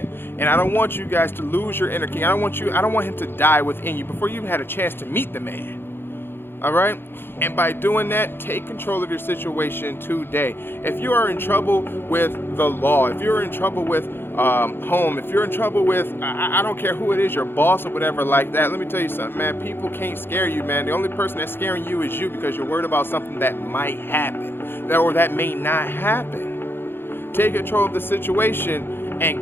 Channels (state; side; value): late; right; 0.10 ms